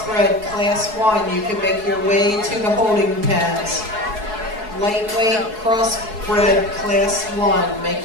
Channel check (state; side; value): late; left; 4.7 ms